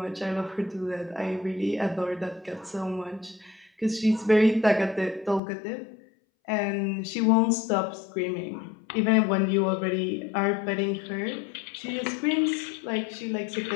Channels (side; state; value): right; drops out; at 5.4 s